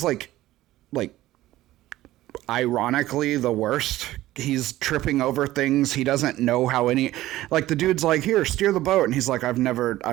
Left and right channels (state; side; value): quieter; left; 15.7 dB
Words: like ironically the worst. He's tripping over things. He doesn't know how any, like the dude's like, here, steer the boat. And he's like, I've